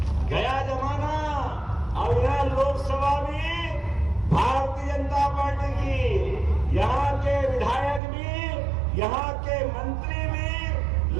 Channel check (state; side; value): drops out; left; at 8.0 s